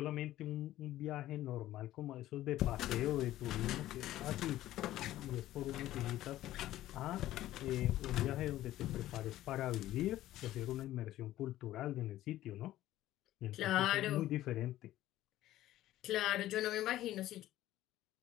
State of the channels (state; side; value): quieter; right; 14.4 dB